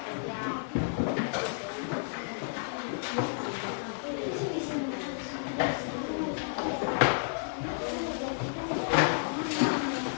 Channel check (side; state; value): right; silent; digital silence